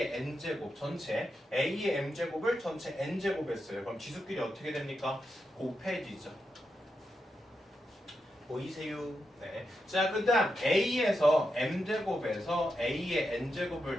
n제곱 전체 a의 m제곱을 전체 n제곱 했어요. 그럼 지수끼리 어떻게 됩니까? 곱해지죠. 보이세요? 네. 자, 그 다음 a에서 m제곱에서 a의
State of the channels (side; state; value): both; normal; correlation 0.86